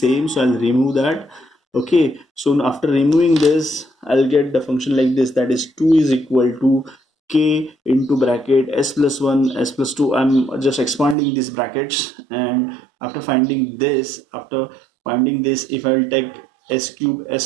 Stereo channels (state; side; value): drops out; left; at 11.2 s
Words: so I'll remove that. Okay, so after removing this, I'll get the function like this, that is 2 is equal to k into bracket s plus 1 s plus 2. I'm just expanding these brackets, and after finding this, if I will take s cube s